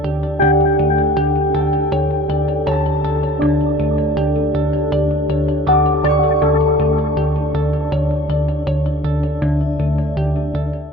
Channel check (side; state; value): both; normal; correlation 0.50